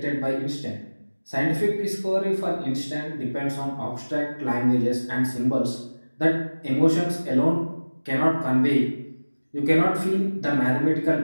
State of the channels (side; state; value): both; inverted; correlation -1.00